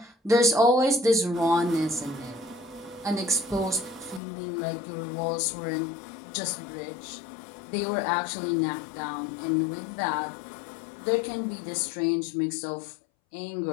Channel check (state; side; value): drops out; right; at 4.2 s